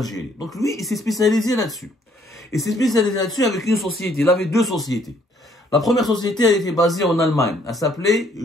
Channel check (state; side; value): normal; both; correlation 0.65